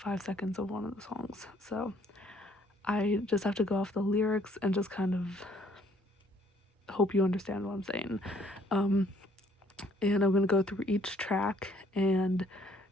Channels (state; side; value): normal; both; correlation 0.62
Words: seconds of one of the songs. So I just have to go off the lyrics and just kind of hope you understand what I'm saying. And I'm going to go through each track and